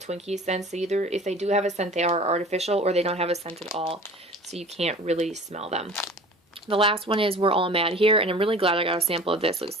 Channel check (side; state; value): both; normal; correlation 0.42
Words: Twinkie scents, either if they do have a scent, they are artificial, or they don't have a scent at all, so you can't really smell them. The last one is We're All Mad Here, and I'm really glad I got a sample of this. It